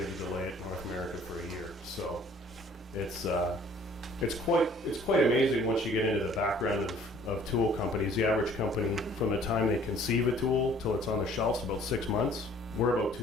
to delay it in North America for a year. So it's quite amazing once you get into the background of tool companies. The average company, from the time they conceive a tool till it's on the shelves, about 6 months. We're about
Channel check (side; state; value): both; normal; correlation 0.55